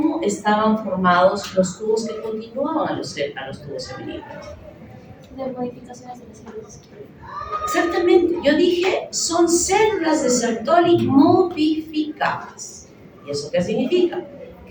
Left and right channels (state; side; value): identical; both; correlation 1.00